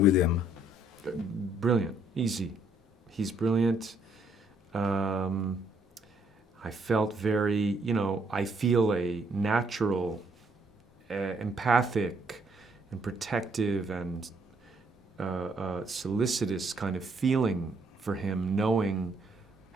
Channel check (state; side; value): normal; both; correlation 0.69